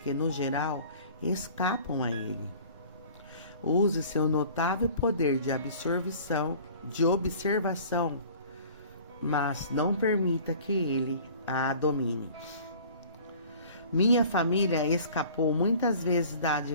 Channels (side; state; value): both; inverted; correlation -0.47